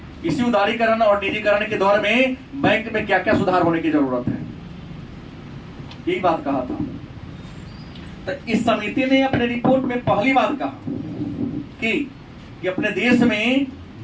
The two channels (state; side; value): identical; both; correlation 1.00